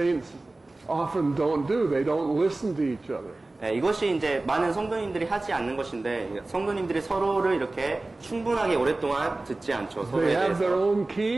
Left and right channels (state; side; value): quieter; left; 3.0 dB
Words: often don't do. They don't listen to each other. 이것이 이제 많은 성도님들이 하지 않는 것인데 성도님들이 서로를 이렇게 충분하게 오랫동안 듣지 않죠. 서로에 They have their 대해서. own